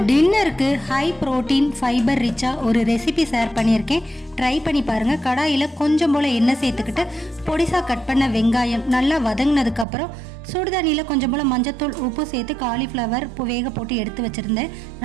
டின்னருக்கு ஹை ப்ரோட்டீன் ஃபைபர் ரிச்சாக ஒரு ரெசிபி ஷேர் பண்ணியிருக்கேன், ட்ரை பண்ணி பாருங்கள். கடாயில் கொஞ்சம் போல் எண்ணெய் சேர்த்துக்கிட்டு பொடிசாக கட் பண்ண வெங்காயம் நல்லா வதங்கினதுக்கப்புறம் சுடுதண்ணியில் கொஞ்சம் போல் மஞ்சத்தூள், உப்பு சேர்த்து காலிஃப்ளவர் வேக போட்டு எடுத்து வச்சுருந்தேன்.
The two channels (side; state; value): left; drops out; at 9.9 s